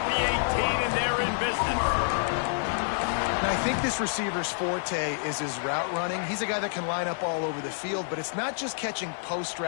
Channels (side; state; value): right; silent; digital silence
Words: the 18, and they're in business. And I think this receiver's forte is his route running. He's a guy that can line up all over the field, but it's not just catching post